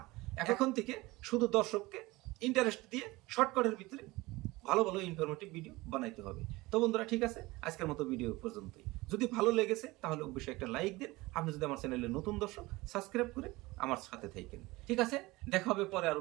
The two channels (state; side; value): quieter; left; 21.1 dB